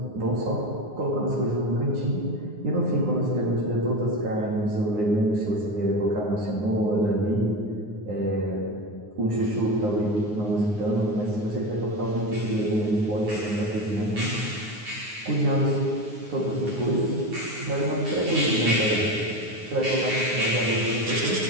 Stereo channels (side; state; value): left; late; 9.6 ms